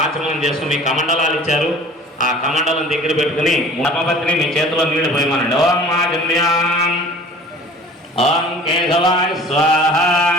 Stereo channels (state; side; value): normal; both; correlation 0.46